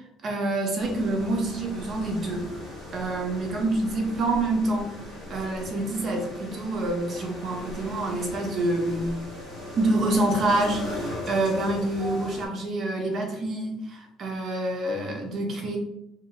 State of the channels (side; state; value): both; normal; correlation 0.66